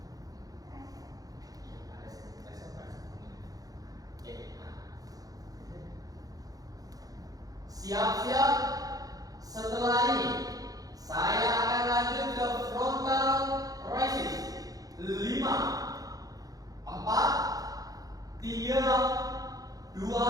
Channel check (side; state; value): left; late; 0.18 ms